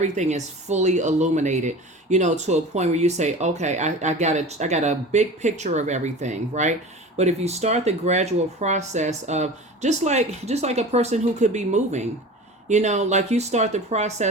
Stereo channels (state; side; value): normal; both; correlation 0.36